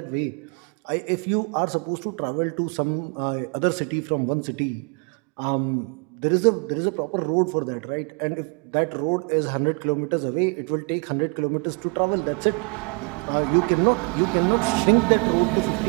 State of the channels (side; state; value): left; quieter; 35.6 dB